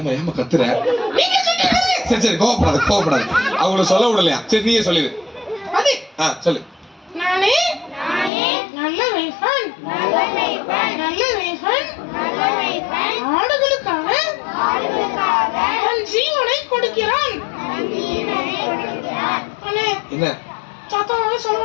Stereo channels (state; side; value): drops out; right; at 8.3 s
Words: ஏமா கத்துற? சரி சரி கோவப்படாது. அவங்கள சொல்ல விடலையா? சரி நீயே சொல்லிடு. சொல்லு. நானே நல்ல மேய்ப்பன். நல்ல மேய்ப்பன் ஆடுகளுக்காக தன் ஜீவனை கொடுக்கிறான். என்ன சத்தமாவே சொல்ல